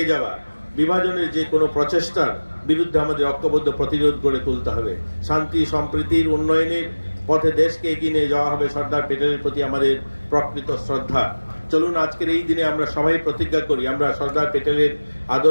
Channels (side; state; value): both; inverted; correlation -1.00